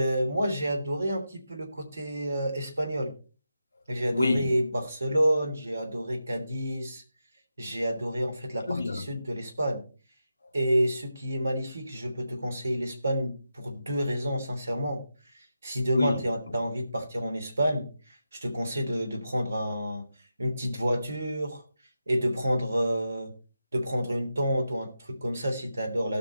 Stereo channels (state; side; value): inverted; both; correlation -0.88